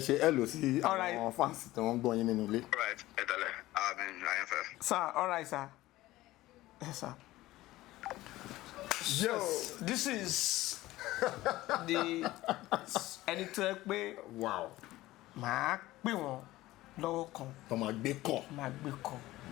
hello sí àwọn fans tí wọ́n gbọ́ yín nínú ilé. All right, ẹ tẹ̀lé. Àyànfẹ́. Sir, all right sir. Yes sir. Yes. So, this is the ẹni tó ẹ pé wow màá pè wọ́n lọ́wọ́ kan. tó máa gbé kọ̀. máa gbé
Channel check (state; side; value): quieter; right; 17.1 dB